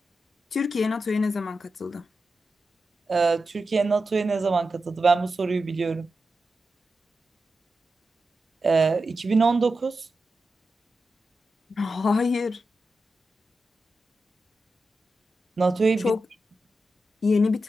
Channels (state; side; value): normal; both; correlation 0.90